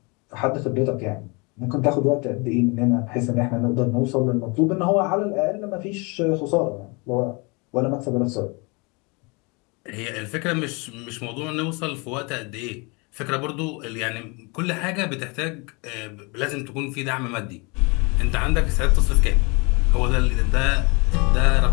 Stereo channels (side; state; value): right; quieter; 29.4 dB